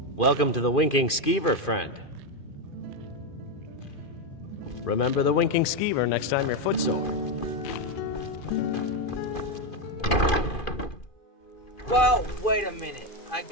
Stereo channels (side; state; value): right; late; 2.4 ms